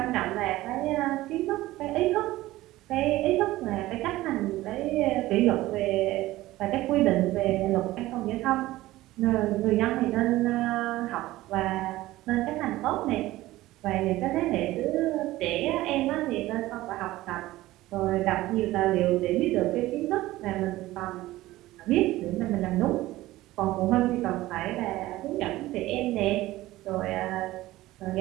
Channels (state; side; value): quieter; left; 17.0 dB